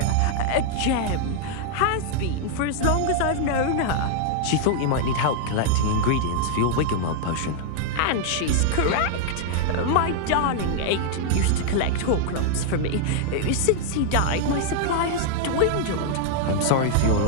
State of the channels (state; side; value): different; both; correlation -0.01